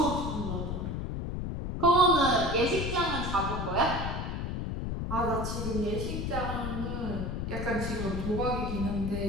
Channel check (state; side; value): noise; left; rumble, 3 dB below the sound